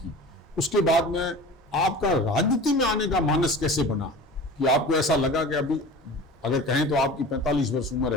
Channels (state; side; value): normal; both; correlation 0.37